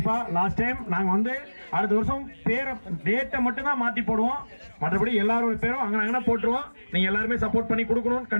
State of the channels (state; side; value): inverted; both; correlation -1.00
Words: லாஸ்ட் டைம் நாங்க வந்து அடுத்த வருஷம் பேரை டேட்டை மட்டும் தான் மாத்தி போடுவோம், மற்றபடி எல்லாரோட பேரும் அங்கே போட்டுருவோம். நீங்க எல்லாருமே சப்போர்ட் பண்ணி கொடுக்கணும்